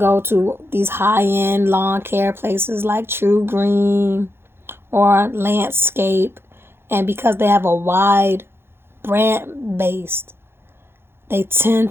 to these high-end lawn care places like True Green or Landscape, and because they have a wide brand base, they tend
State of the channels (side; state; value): left; late; 0.11 ms